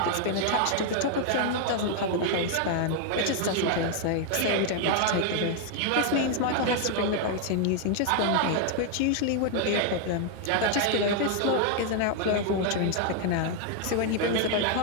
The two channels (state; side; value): different; both; correlation 0.00